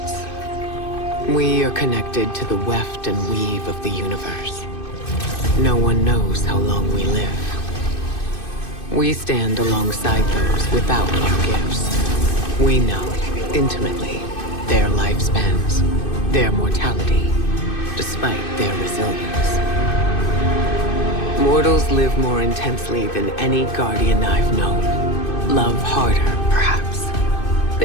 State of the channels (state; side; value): late; right; 2.6 ms